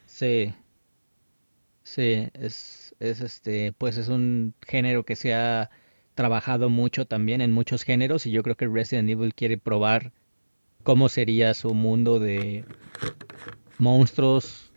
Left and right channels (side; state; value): both; inverted; correlation -1.00